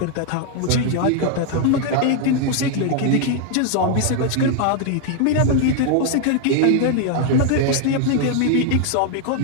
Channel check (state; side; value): different; both; correlation 0.00